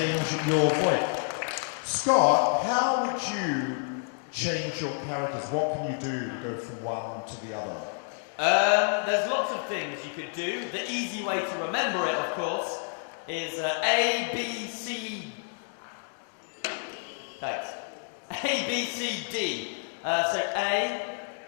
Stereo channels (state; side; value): silent; right; 58 dB below the other